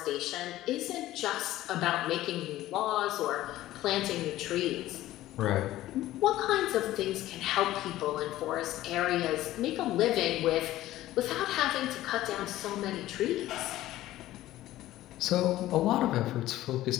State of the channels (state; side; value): quieter; right; 15.1 dB